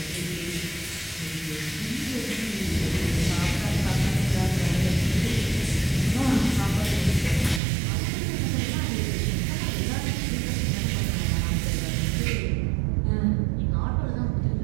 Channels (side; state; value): left; drops out; at 7.6 s